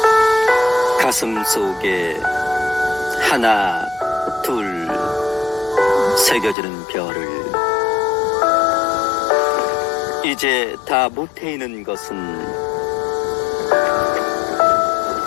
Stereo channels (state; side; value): drops out; right; at 6.6 s